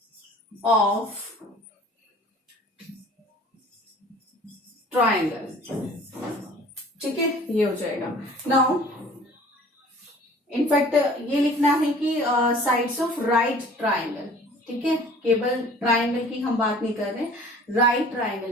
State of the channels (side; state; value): both; normal; correlation 0.48